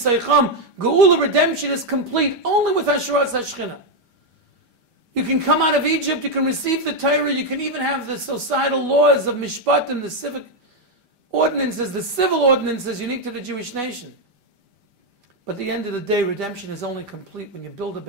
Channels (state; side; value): late; left; 5.0 ms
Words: Geula, redemption is complete only with Hasharas HaShechina. You can come out of Egypt, you can receive the Torah, you can even have the societal laws of Mishpatim, the civic ordinances, the civil ordinances unique to the Jewish nation. But at the end of the day, redemption is only complete when you build a